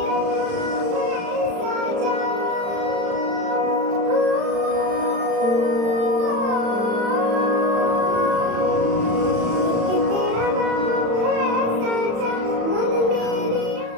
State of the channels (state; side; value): late; left; 35 ms